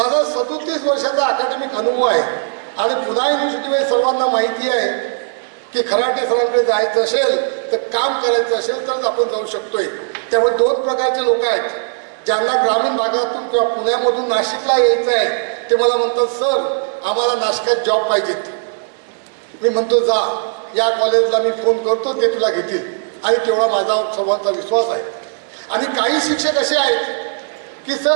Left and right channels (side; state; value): left; silent; digital silence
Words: 37 वर्षाचा अकॅडमिक अनुभव आहे आणि पुणे युनिव्हर्सिटीमध्ये सर्वांना माहिती आहे की खराटे सरांकडे जायचं असेल तर काम करायचं असेल तरच आपण जाऊ शकतोय. त्यामुळे 2 प्रकारचे लोक आहेत, ज्यांना ग्रामीण भागातून किंवा पुण्यामधून नाशिकला यायचं आहे ते मला म्हणतात, सर आम्हाला नाशिकात जॉब पाहिजेत. मी म्हणतो जा, या कॉलेजला मी फोन करतो, ते तुला घेतील. आणि तेवढा माझा सर्वांचा विश्वास आहे. आणि काही शिक्षक असे आहेत की